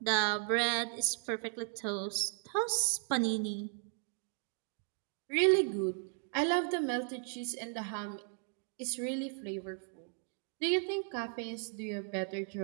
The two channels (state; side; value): silent; left; 54 dB below the other